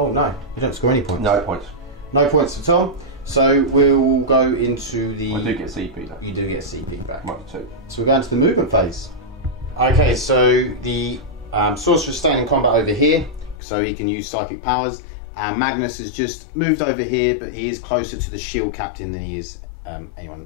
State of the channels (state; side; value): drops out; right; at 13.6 s